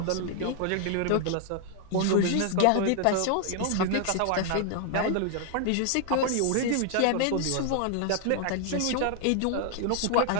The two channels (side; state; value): both; different; correlation 0.00